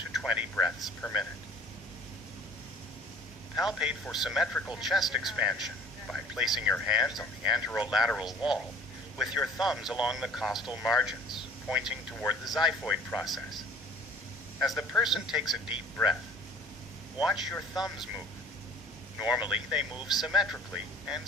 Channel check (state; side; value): normal; both; correlation 0.51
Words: 20 breaths per minute. Palpate for symmetrical chest expansion by placing your hands on the anterolateral wall with your thumbs along the costal margins, pointing toward the xiphoid process. As the person takes a deep breath, watch your thumbs move. Normally, they move symmetrically and